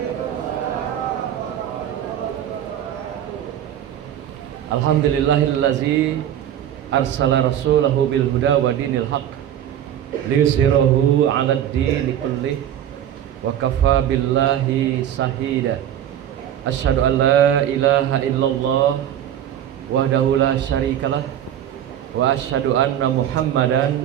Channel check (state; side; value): quieter; left; 10.6 dB